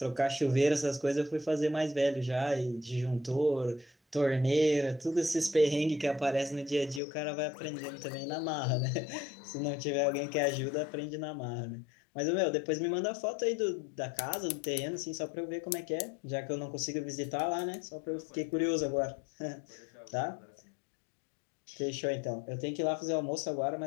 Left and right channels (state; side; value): drops out; right; at 7.0 s